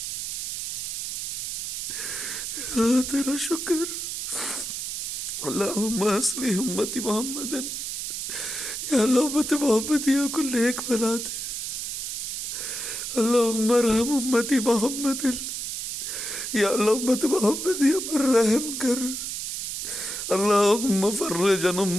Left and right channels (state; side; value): noise; right; hiss, 4 dB below the sound